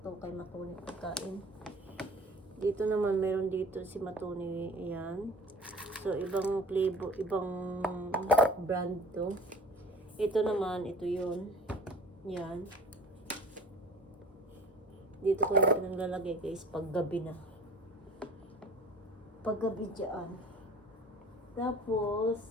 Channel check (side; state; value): both; normal; correlation 0.45